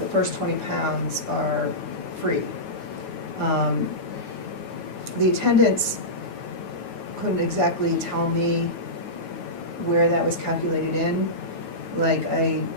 first 20 pounds are free. The attendants couldn't exactly tell me where that was calculated in. Like I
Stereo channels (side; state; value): right; late; 9.3 ms